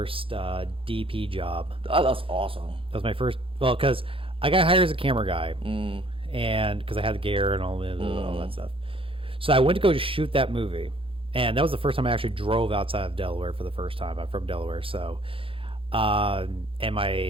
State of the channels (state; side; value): late; left; 0.26 ms